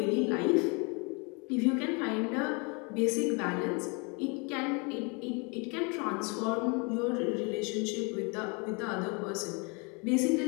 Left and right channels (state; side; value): quieter; right; 32.2 dB